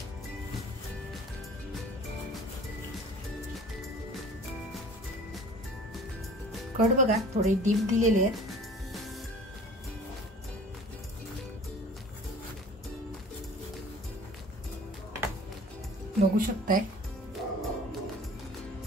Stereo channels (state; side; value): normal; both; correlation 0.46